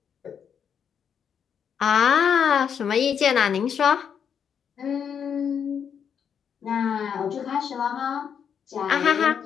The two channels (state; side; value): quieter; right; 7.6 dB